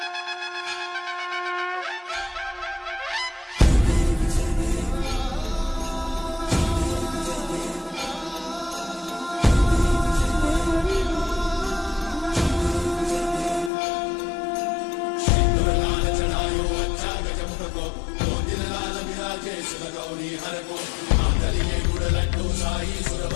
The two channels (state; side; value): drops out; right; at 13.7 s